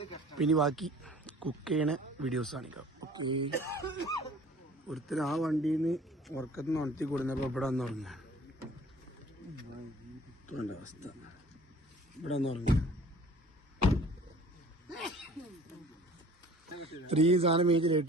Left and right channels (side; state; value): both; normal; correlation 0.49